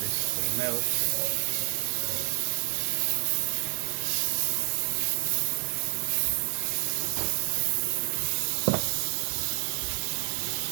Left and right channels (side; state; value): left; silent; 59 dB below the other